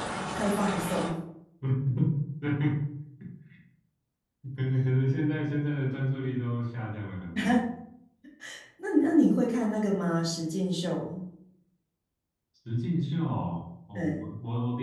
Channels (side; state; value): both; identical; correlation 1.00